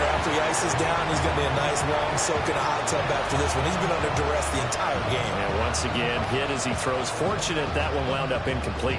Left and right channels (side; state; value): both; identical; correlation 1.00